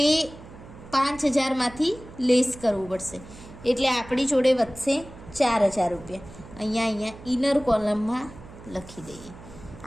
એ 5,000માંથી લેસ કરવું પડશે એટલે આપણી જોડે વધશે 4,000 રૂપિયા. અહીંયા ઇનર કોલમમાં લખી દઈએ.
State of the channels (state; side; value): noise; right; hum, 18 dB below the sound